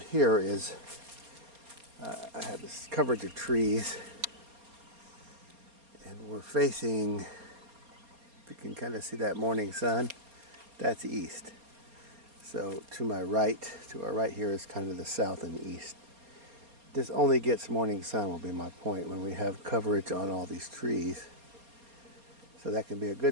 here is, I have this coverage of trees, and we're facing, if you can kind of see that morning sun, that's east. So to our right here is kind of the south and east. This only gets morning sun will be my point when we have coverage on all these trees. So that can be a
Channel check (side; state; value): left; late; 4.3 ms